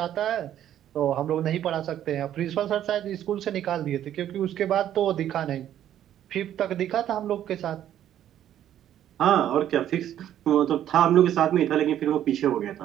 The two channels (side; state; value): left; quieter; 11.2 dB